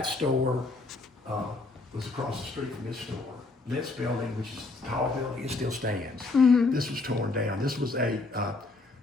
store was across the street from this store. This building, which is a tall building, it still stands. This was torn down. This was a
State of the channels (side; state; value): right; quieter; 3.5 dB